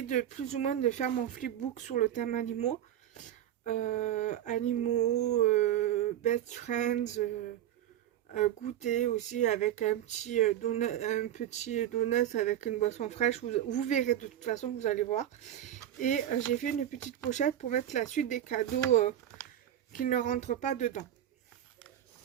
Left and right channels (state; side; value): quieter; left; 11.4 dB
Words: de plus ou moins de faire mon flipbook sur le thème animaux. Best friends, goûter aussi avec un petit donut avec une boisson fraîche. Vous verrez de toute façon, vous allez voir. Et j'ai fait une petite pochette pour mettre la suite des cadeaux qui ne rentrent pas dedans.